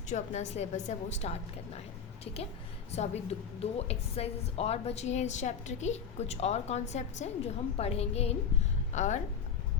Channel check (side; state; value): right; quieter; 6.8 dB